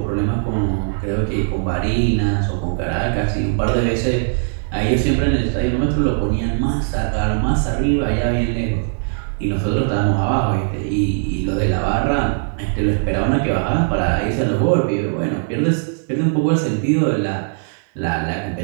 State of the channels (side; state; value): left; silent; digital silence